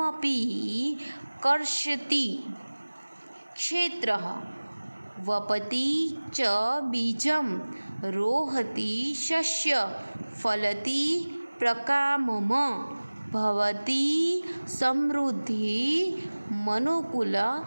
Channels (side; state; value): both; inverted; correlation -1.00